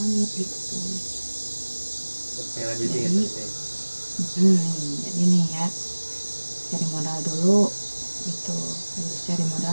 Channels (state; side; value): inverted; both; correlation -1.00